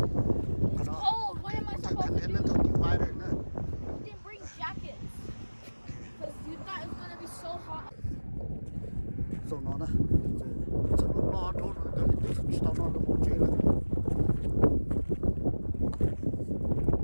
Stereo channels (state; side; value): inverted; both; correlation -1.00